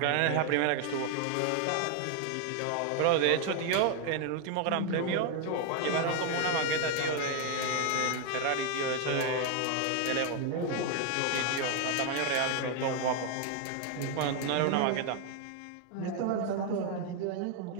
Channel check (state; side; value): different; both; correlation 0.01